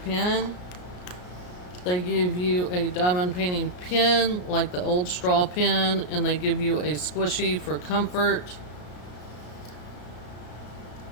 They give you a diamond painting pen like the old straw pen, and they give you a squishy for comfort.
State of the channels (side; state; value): right; late; 33 ms